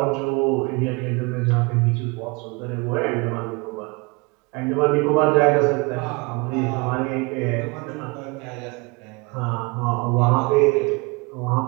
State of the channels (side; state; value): left; quieter; 27.8 dB